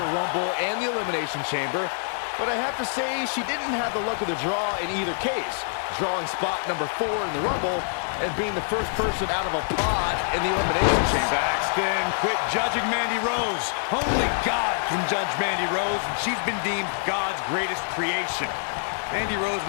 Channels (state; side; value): silent; right; digital silence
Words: Rumble and the Elimination Chamber, but I have to say she didn't have the luck of the draw in either case, drawing spot number 4 in the Rumble and being the first person out of a pod in the Elimination Chamber. Saxton, quit judging Mandy Rose. Only God can judge Mandy Rose, and she's been deemed God's greatest creation. Mandy Rose